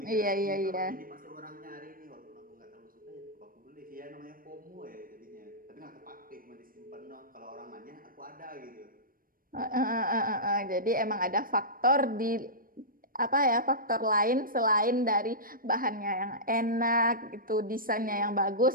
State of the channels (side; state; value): left; late; 0.41 ms